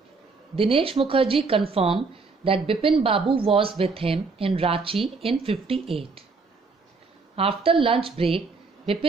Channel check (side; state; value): left; quieter; 4.3 dB